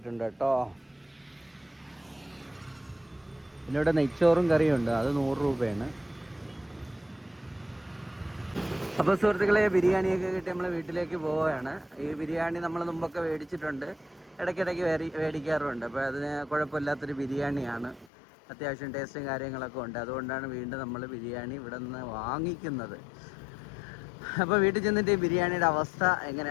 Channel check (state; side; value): drops out; right; at 18.1 s